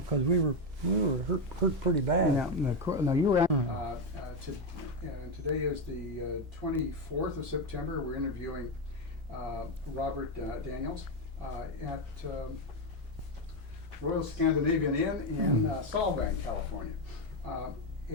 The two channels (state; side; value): normal; both; correlation 0.07